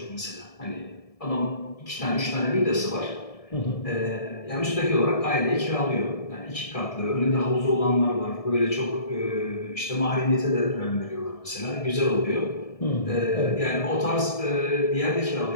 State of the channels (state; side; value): late; right; 1.7 ms